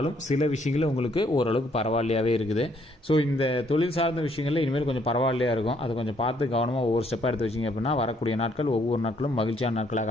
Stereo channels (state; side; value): normal; both; correlation 0.68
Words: சில விஷயங்களில் உங்களுக்கு ஓரளவுக்கு பரவாயில்லையாகவே இருக்குது. ஸோ இந்த தொழில் சார்ந்த விஷயங்களில் இனிமேல் கொஞ்சம் பரவாயில்லையாக இருக்கும். அதை கொஞ்சம் பார்த்து கவனமாக ஒவ்வொரு ஸ்டெப்பாக எடுத்து வச்சிங்க அப்படின்னா வரக்கூடிய நாட்கள் ஒவ்வொரு நாட்களும் மகிழ்ச்சியான